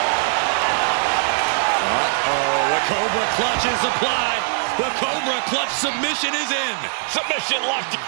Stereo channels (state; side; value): silent; left; digital silence